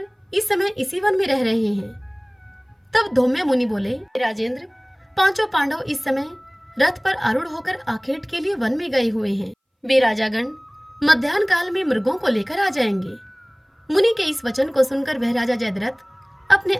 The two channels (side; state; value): both; identical; correlation 1.00